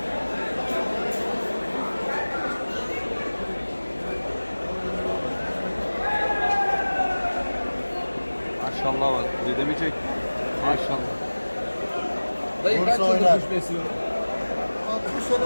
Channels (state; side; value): inverted; both; correlation -1.00